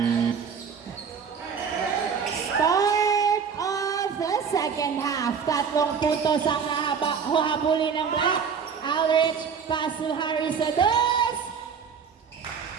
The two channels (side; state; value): left; quieter; 6.5 dB